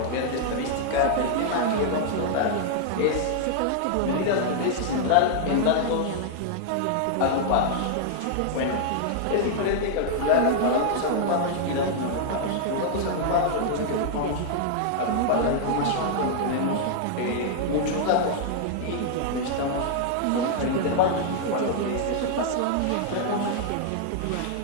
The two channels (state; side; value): different; both; correlation -0.01